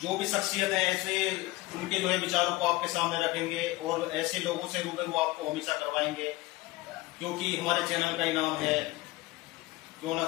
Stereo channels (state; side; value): quieter; right; 19.2 dB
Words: जो भी शख्सियत है, ऐसे उनके जो है विचारों को आपके सामने रखेंगे, और ऐसे लोगों से रूबरू आपको हमेशा करवाएंगे, क्योंकि हमारे चैनल का ही नाम है क्यों ना